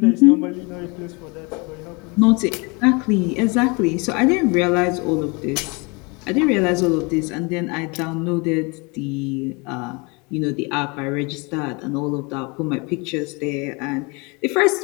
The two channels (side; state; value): right; quieter; 29.5 dB